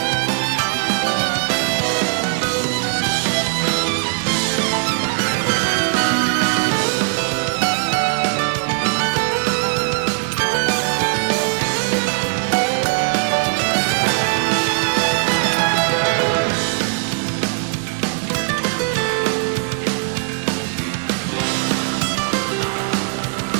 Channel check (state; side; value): silent; left; digital silence